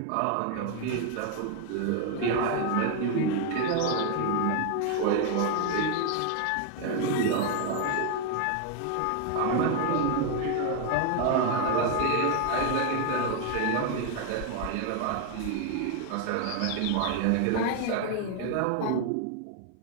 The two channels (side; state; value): both; different; correlation 0.01